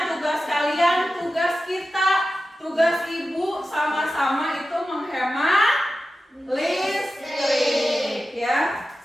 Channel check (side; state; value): both; normal; correlation 0.93